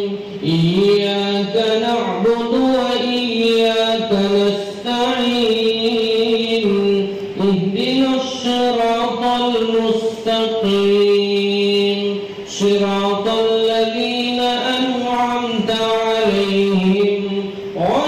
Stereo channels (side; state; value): both; identical; correlation 1.00